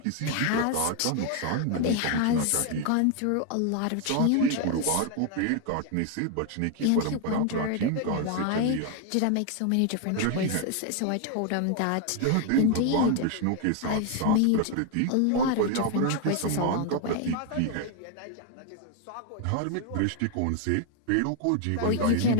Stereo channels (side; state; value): both; different; correlation 0.01